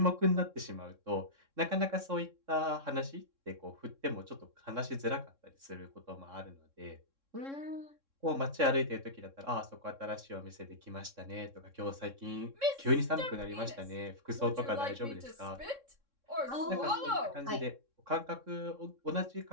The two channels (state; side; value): late; left; 3.6 ms